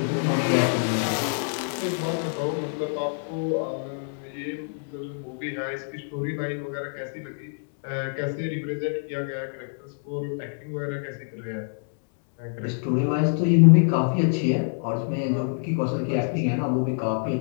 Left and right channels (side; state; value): right; silent; digital silence